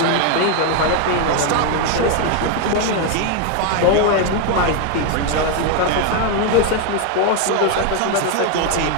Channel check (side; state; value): both; different; correlation 0.01